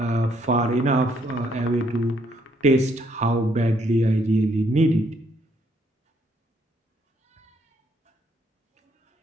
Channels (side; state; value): both; normal; correlation 0.70